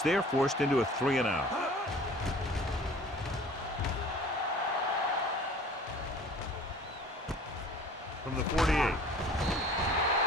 there, forced into a 3-and-out.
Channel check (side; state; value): both; normal; correlation 0.48